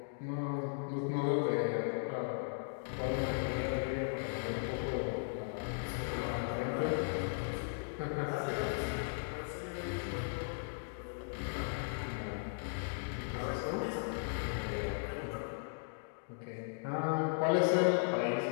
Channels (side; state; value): right; silent; digital silence